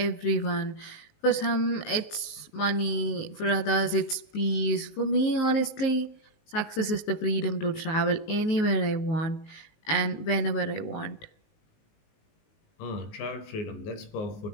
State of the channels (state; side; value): late; right; 19 ms